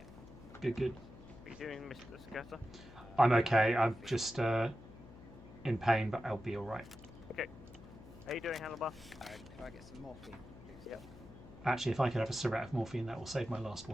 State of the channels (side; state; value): left; noise; hum, 17 dB below the sound